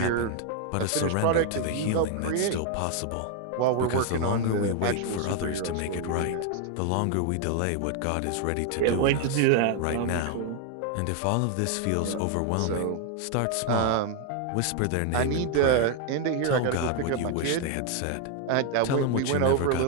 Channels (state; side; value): different; both; correlation 0.00